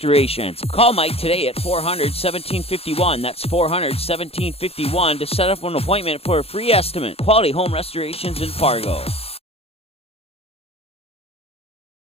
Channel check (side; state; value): right; late; 0.29 ms